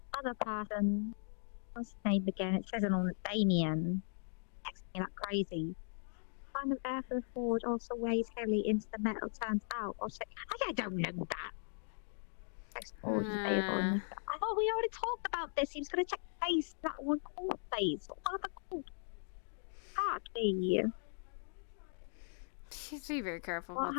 other person. What's his name again? It says it on Damien. Texting me like crazy. Kind of air for the forge also weighs heavily into the metal turns out. Or say, I don't know that. Text forge is available in the... I thought we already talked about this. He was going to check the face. That one called face. What other called? Exactly. be very careful What about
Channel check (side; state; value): right; silent; digital silence